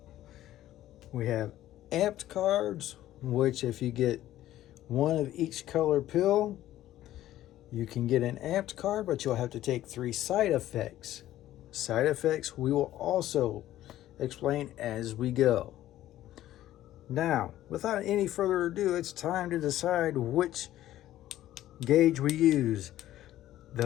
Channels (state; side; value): quieter; right; 13.7 dB